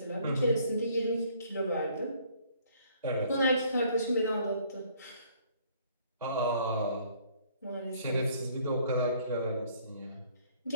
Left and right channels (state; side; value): inverted; both; correlation -0.61